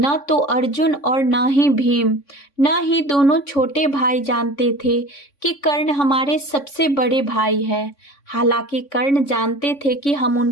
तो अर्जुन और न ही भीम, न ही दोनों छोटे भाई जानते थे कि कर्ण हमारे सबसे बड़े भाई है। हालांकि कर्ण जानते थे कि हम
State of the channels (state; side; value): late; right; 3.6 ms